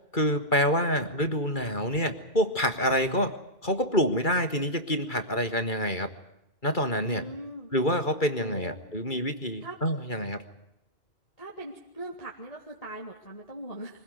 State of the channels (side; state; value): right; late; 2.3 ms